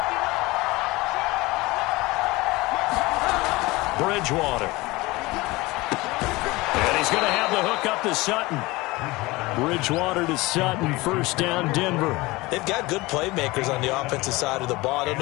Bridgewater. And he's going to have the hook up to Sutton. Bridgewater to Sutton, 1st down Denver. They've got good playmakers on the offensive side of the ball. I don't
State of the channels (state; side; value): quieter; right; 21.6 dB